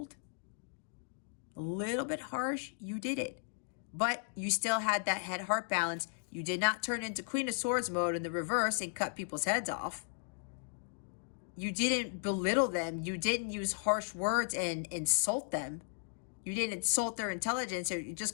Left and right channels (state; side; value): silent; right; digital silence